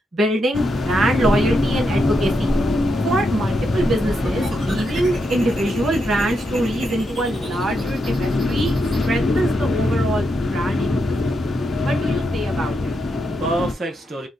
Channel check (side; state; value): both; normal; correlation 0.83